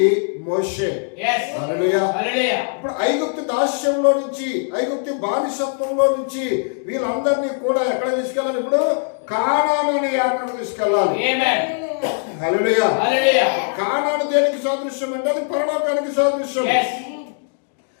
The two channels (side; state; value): right; silent; digital silence